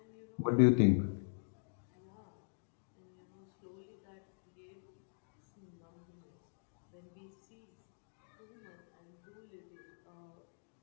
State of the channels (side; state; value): right; silent; digital silence